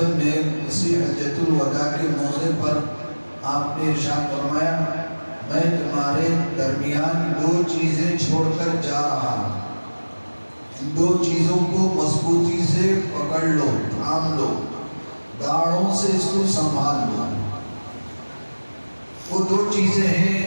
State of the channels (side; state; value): both; inverted; correlation -1.00